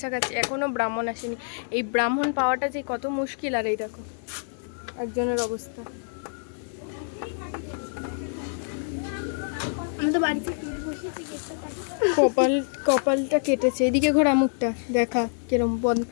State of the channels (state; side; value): silent; right; digital silence